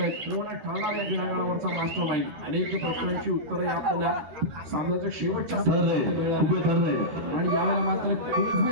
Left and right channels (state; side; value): late; left; 13 ms